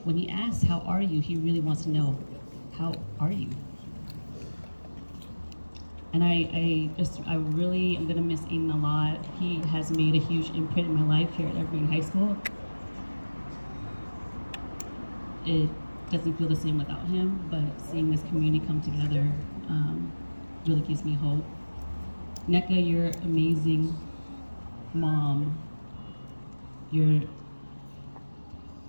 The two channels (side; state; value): both; inverted; correlation -1.00